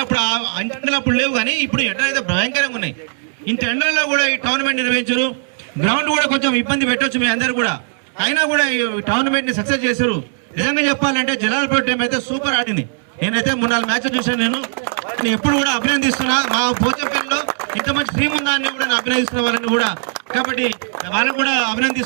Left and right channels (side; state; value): left; silent; 67 dB below the other